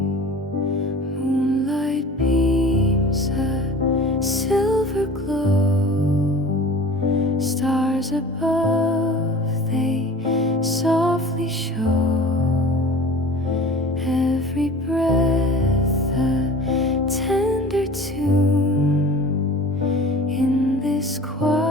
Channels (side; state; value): both; normal; correlation 0.41